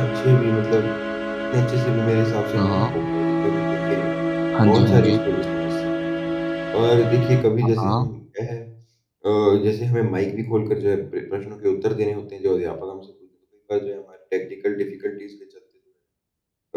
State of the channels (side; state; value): both; identical; correlation 1.00